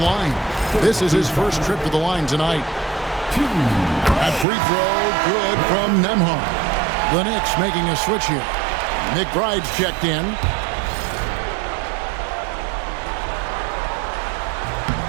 This is his first trip to the line tonight. That free throw, good from Nembhard. The Knicks making a switch here. McBride's checked in.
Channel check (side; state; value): left; drops out; at 4.5 s